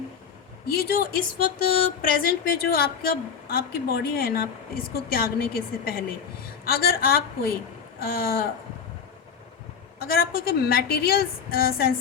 ये जो इस वक्त प्रेजेंट पे जो आपकी बॉडी है ना, इसको त्यागने के से पहले अगर आप कोई कोई मटेरियल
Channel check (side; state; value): right; quieter; 6.8 dB